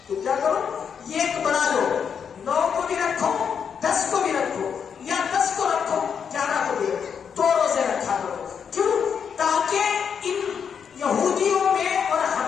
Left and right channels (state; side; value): quieter; right; 7.1 dB